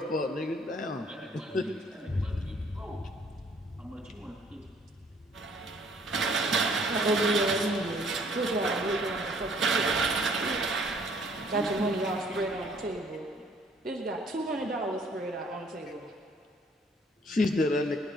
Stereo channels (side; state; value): both; normal; correlation 0.60